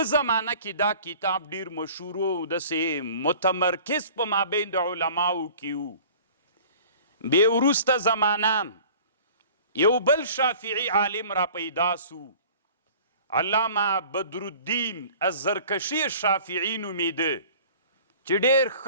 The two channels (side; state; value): both; inverted; correlation -0.46